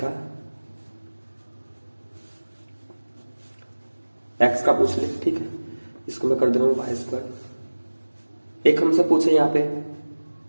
x का पूछ ले, ठीक है, इसको मैं कर दे रहा हूं वाई स्क्वायर। एक हमसे पूछे यहाँ पे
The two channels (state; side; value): inverted; both; correlation -1.00